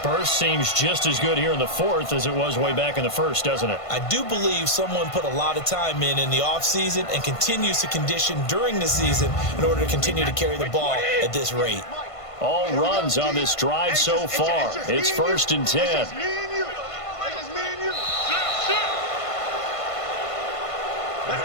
Burst seems just as good here in the 4th as it was way back in the 1st, doesn't it? I do believe someone put a lot of time in the offseason and continues to condition during the season in order to continue to carry the ball at this rate. All runs on this drive so far. It's 1st and 10.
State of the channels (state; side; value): late; right; 1.5 ms